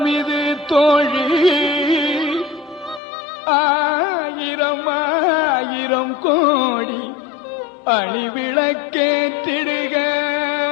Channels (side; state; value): right; drops out; at 3.0 s